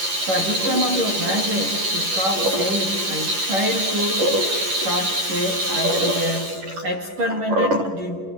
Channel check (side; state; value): left; late; 11 ms